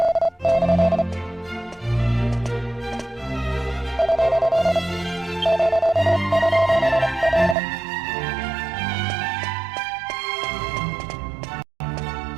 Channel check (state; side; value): drops out; left; at 7.6 s